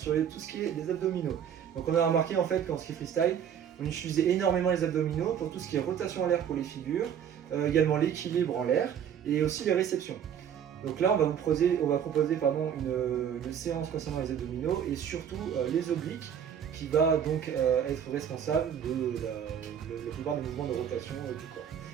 tout ce qui est les abdominaux. Donc on a remarqué en fait qu'en ski freestyle, on utilisait énormément les abdominaux pour tout ce qui est rotation en l'air pour les figures, également l'équilibre en l'air et aussi les réceptions. Donc là, on va proposer une séance concernant les abdominaux et surtout les obliques qui va donc être responsable de la plupart des mouvements de rotation du corps.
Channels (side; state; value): left; quieter; 8.7 dB